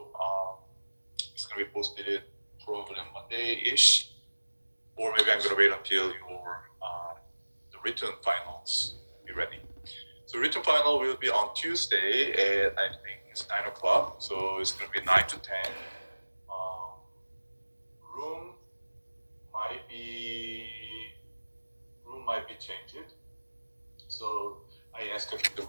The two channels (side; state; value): both; inverted; correlation -1.00